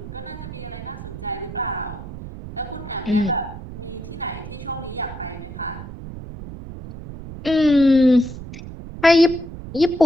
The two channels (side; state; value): right; noise; rumble, 11 dB below the sound